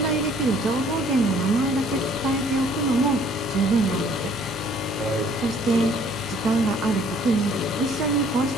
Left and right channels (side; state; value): both; normal; correlation 0.59